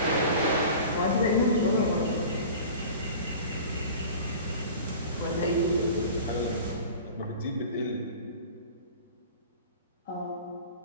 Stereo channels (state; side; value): inverted; both; correlation -0.39